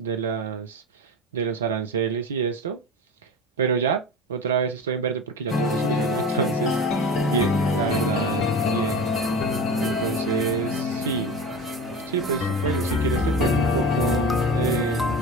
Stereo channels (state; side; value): normal; both; correlation 0.29